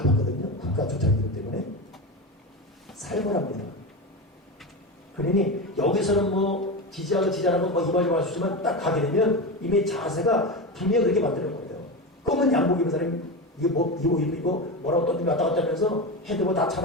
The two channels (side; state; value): both; normal; correlation 0.20